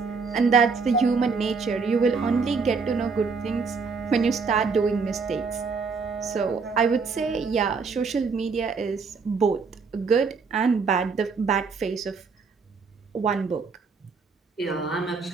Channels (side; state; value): left; quieter; 4.9 dB